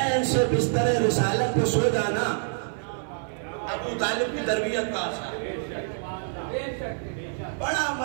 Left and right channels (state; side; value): silent; left; 56 dB below the other